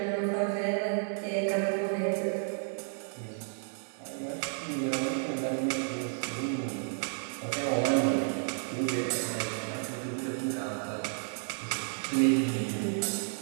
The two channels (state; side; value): silent; left; digital silence